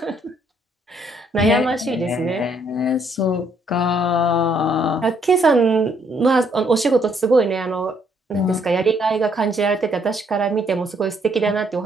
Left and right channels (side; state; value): both; normal; correlation 0.69